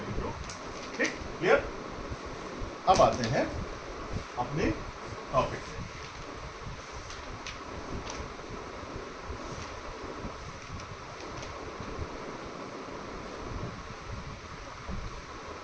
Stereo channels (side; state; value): both; identical; correlation 1.00